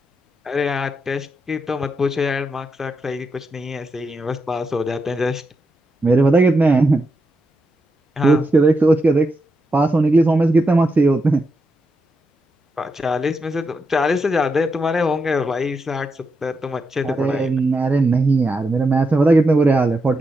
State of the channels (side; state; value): both; normal; correlation 0.85